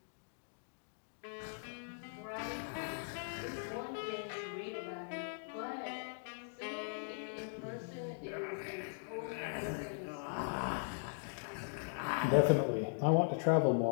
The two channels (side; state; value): right; silent; digital silence